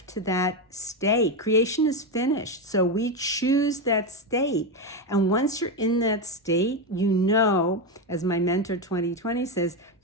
to that state. Creation is finished, so we choose that state. And once you're in that state, as my mentor 2020 says,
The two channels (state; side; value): normal; both; correlation 0.11